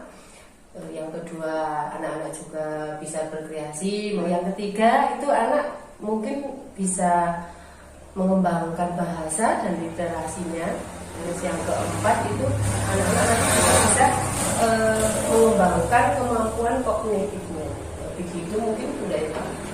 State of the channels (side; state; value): both; identical; correlation 1.00